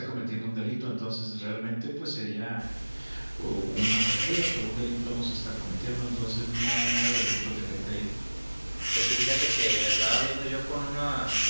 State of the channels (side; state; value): both; inverted; correlation -1.00